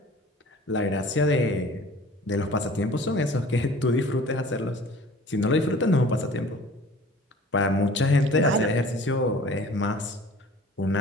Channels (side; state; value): both; normal; correlation 0.46